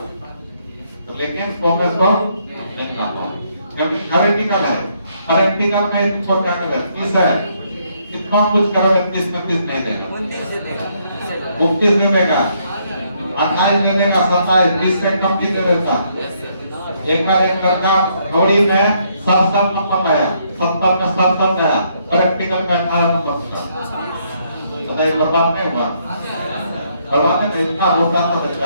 तो लेकिन 100 में 100 नहीं आता क्योंकि थ्योरेटिकल है। प्रैक्टिकल में तुमको क्या करें 30 है, कितना कुछ करोगे 30 में 30 नहीं देगा, 29 दे देगा। 29 दे देगा, 28 दे देगा, 27 20 से कम की दे देता। एक बार एक लड़का थ्योरी में 67 नंबर लाया, 70 में 67 लाया, प्रैक्टिकल में 18 नंबर था। बताइए बर्बाद नहीं हुआ? बर्बाद नहीं, इतना रोता था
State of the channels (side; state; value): both; inverted; correlation -0.72